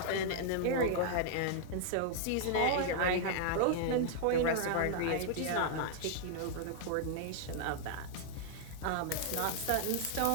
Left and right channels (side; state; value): both; different; correlation -0.01